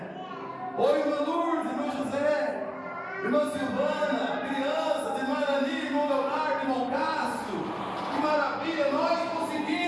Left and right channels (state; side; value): identical; both; correlation 1.00